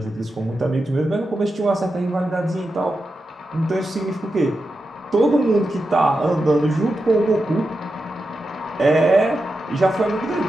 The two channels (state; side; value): normal; both; correlation 0.89